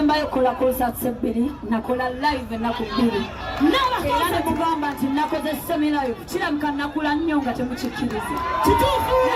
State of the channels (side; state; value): both; identical; correlation 1.00